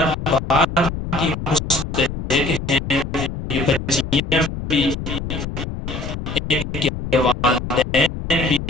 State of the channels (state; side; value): noise; left; rumble, 7 dB below the sound